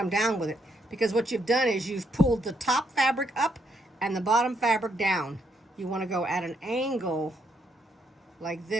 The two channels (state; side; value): normal; both; correlation 0.75